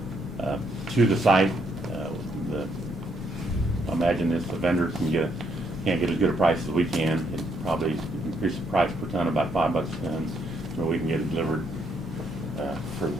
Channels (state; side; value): normal; both; correlation 0.73